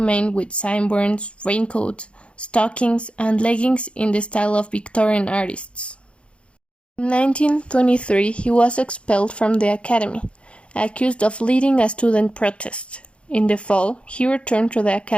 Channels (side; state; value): right; late; 0.059 ms